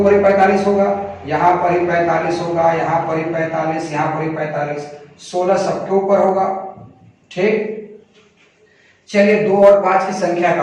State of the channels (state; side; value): identical; both; correlation 1.00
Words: ही 45 होगा, यहाँ पर ही 45 होगा, यहाँ पर ही 45, यहाँ पर ही 45, 16 सबके ऊपर होगा। ठीक, चलिए 2 और 5 की संख्या